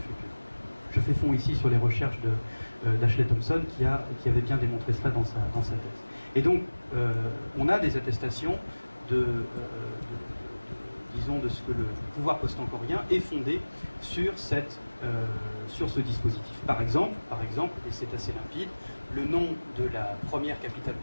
Je fais fond ici sur les recherches d'Ashley Thompson qui avait bien démontré cela dans sa thèse. Et donc, on a des attestations disons, de ce que le pouvoir post-angkorien est fondé sur ce dispositif. Par exemple, et c'est assez limpide, le nom de la première capitale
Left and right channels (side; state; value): both; inverted; correlation -1.00